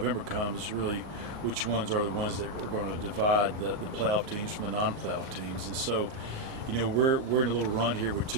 comes, really which ones are the ones that are going to divide the playoff teams from the non-playoff teams. And so, we're in a little run here with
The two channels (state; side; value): late; left; 38 ms